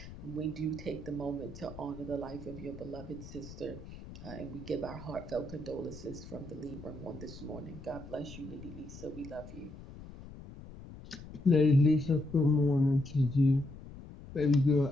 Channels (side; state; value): left; noise; rumble, 15 dB below the sound